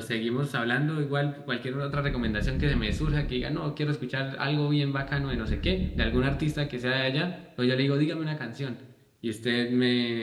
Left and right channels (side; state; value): both; identical; correlation 1.00